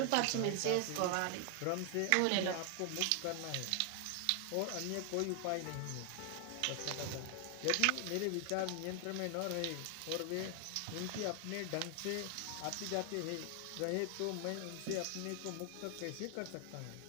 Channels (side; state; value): both; different; correlation 0.00